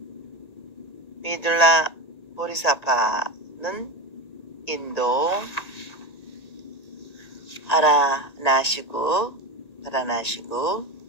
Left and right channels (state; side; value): late; right; 1.9 ms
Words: 미둘라 보리사파는 인도 바라나시구